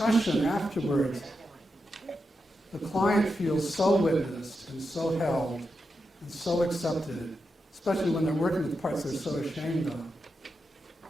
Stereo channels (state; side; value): normal; both; correlation 0.87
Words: afterwards, the client feels so witnessed and so held and so accepted, especially when they're working with parts they're so ashamed of,